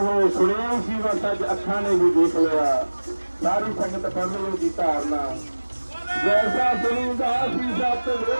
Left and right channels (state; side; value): inverted; both; correlation -1.00